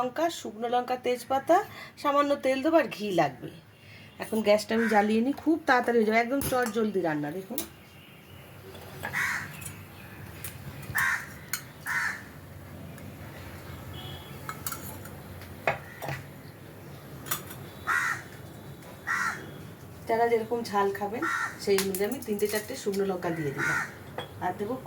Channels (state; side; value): identical; both; correlation 1.00